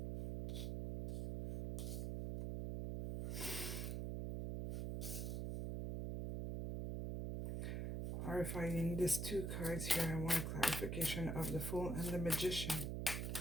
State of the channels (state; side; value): noise; right; hum, 2 dB below the sound